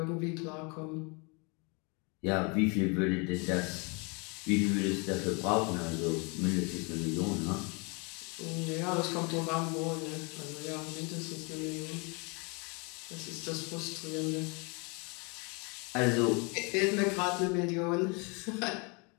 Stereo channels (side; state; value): right; quieter; 31.5 dB